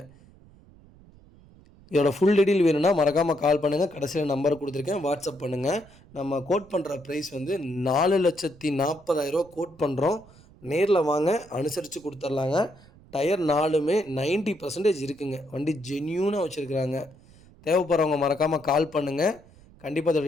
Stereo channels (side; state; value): right; noise; rumble, 25 dB below the sound